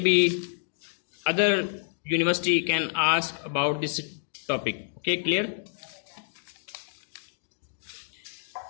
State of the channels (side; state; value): right; silent; digital silence